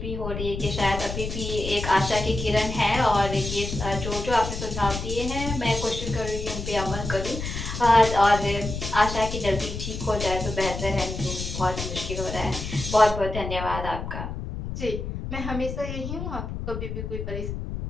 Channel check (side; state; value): left; noise; rumble, 6 dB below the sound